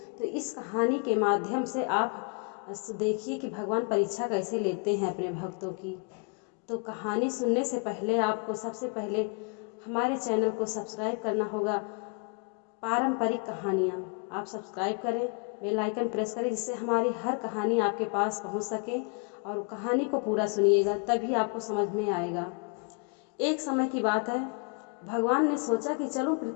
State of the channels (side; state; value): right; quieter; 36.3 dB